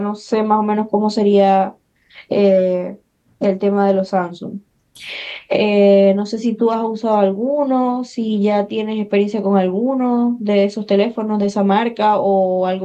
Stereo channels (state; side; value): identical; both; correlation 1.00